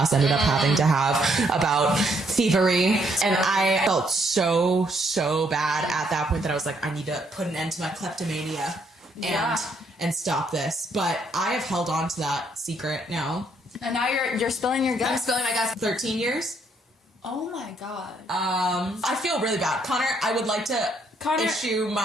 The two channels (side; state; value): both; normal; correlation 0.71